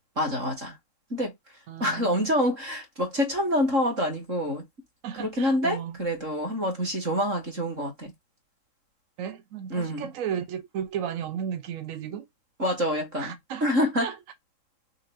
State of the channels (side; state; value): left; late; 3.7 ms